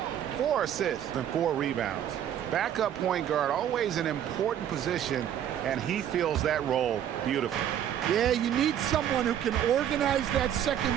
4 assists and 4 rebounds. Backup point guard, always an important position, and he fills that role beautifully. Yeah, you need someone who can organize that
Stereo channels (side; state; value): left; quieter; 10.1 dB